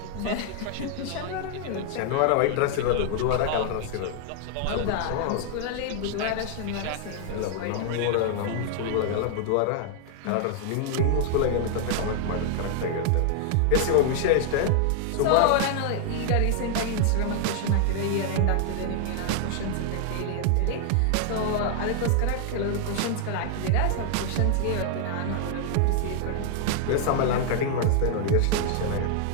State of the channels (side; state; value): both; different; correlation 0.00